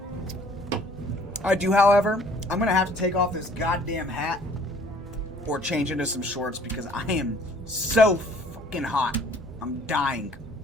I do, however, I'm going to have to take off this goddamn hat or change into some shorts because I am so fucking hot. I'm dying.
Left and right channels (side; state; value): both; normal; correlation 0.55